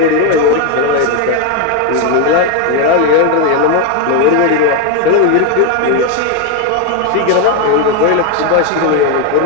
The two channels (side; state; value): both; different; correlation 0.01